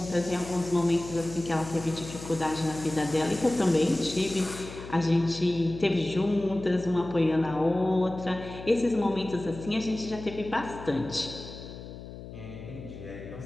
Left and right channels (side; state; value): left; noise; hum, 13 dB below the sound